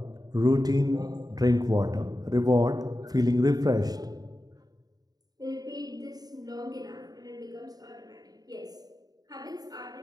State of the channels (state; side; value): late; left; 0.19 ms